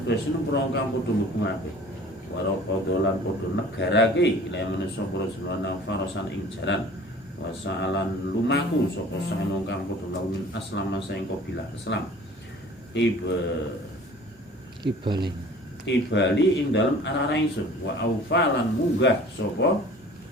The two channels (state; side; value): normal; both; correlation 0.47